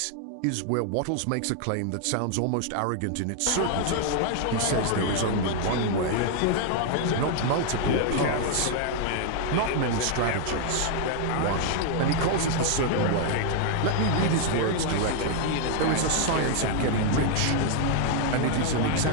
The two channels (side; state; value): both; different; correlation 0.00